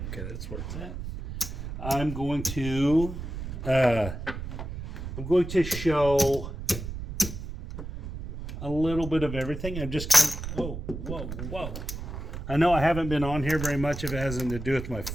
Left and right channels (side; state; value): right; noise; rumble, 7 dB below the sound